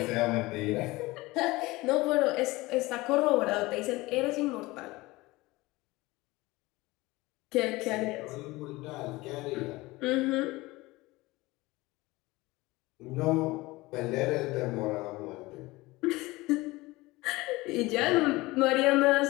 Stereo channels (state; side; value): quieter; right; 20.8 dB